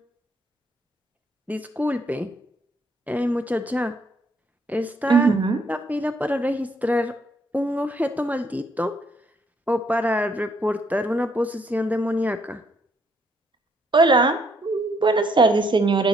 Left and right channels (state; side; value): normal; both; correlation 0.70